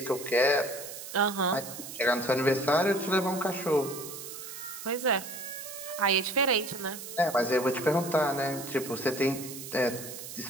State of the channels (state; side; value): noise; right; hiss, 11 dB below the sound